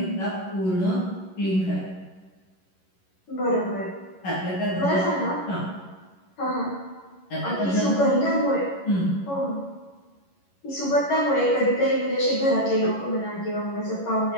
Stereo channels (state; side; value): late; right; 11 ms